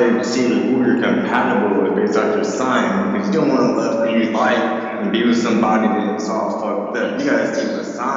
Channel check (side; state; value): both; identical; correlation 1.00